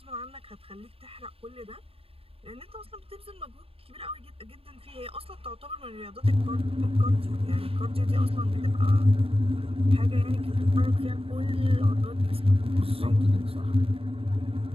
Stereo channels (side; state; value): left; late; 0.27 ms